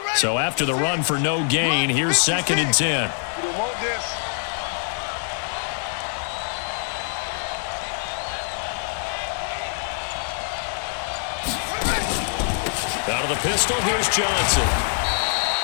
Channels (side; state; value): right; silent; digital silence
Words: So after the run for no gain, here's second and 10. You don't want this. Out of the pistol, here's Johnson.